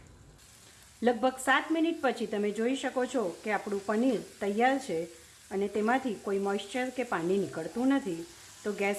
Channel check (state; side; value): identical; both; correlation 1.00